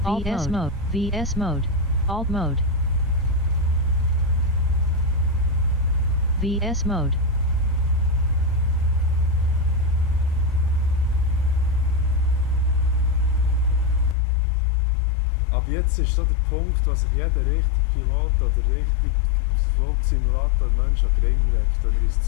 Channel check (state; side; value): drops out; right; at 14.2 s